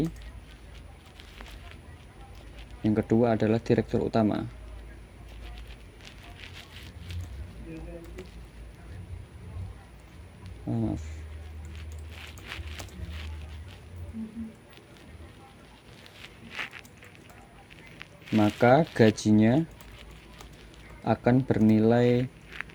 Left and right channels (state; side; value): identical; both; correlation 1.00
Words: Yang kedua adalah direktur utama. Maaf. Maka gajinya akan bernilai,